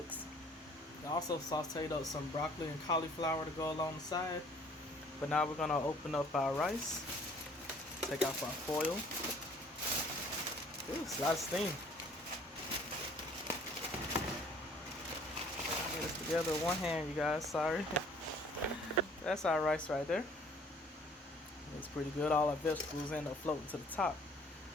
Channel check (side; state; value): both; normal; correlation 0.56